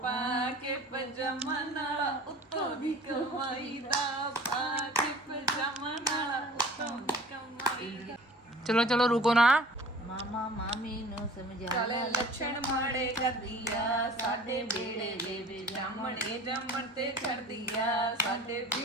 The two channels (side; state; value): both; normal; correlation 0.45